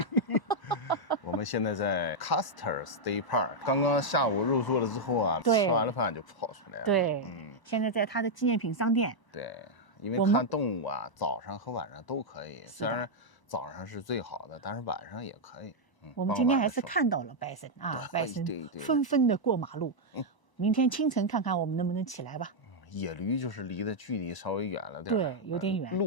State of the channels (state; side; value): late; right; 1.0 ms